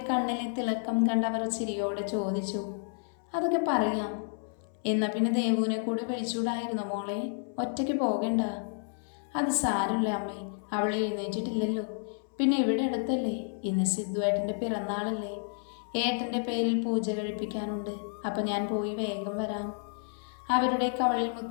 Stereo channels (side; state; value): right; silent; 57 dB below the other